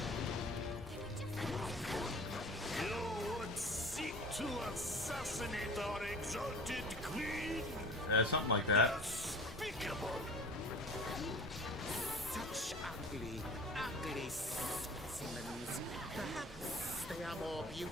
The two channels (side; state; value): both; normal; correlation 0.41